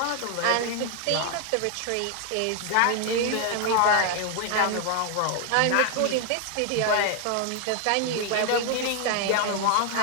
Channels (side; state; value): both; different; correlation 0.00